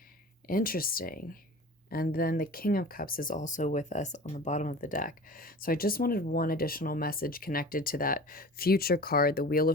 And then the King of Cups is also with us on the bottom of the deck. So I just wanted one additional message connected to that future card, the Wheel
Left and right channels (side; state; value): both; normal; correlation 0.39